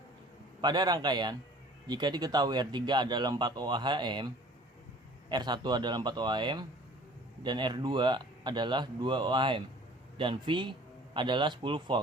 Pada rangkaian, jika diketahui R3 adalah 4 ohm, R1 adalah 4 ohm, dan R2 adalah 2 ohm, dan V adalah 10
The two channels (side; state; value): both; normal; correlation 0.49